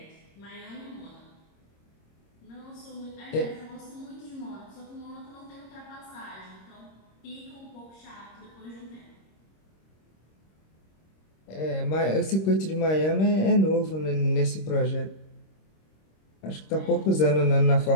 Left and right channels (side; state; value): right; late; 26 ms